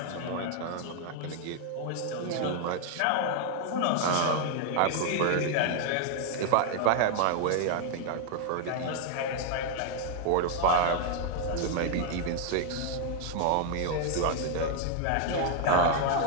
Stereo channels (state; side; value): different; both; correlation 0.00